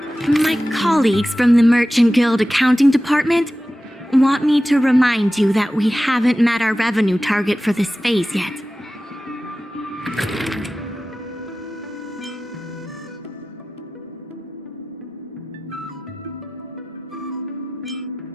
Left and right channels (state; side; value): normal; both; correlation 0.94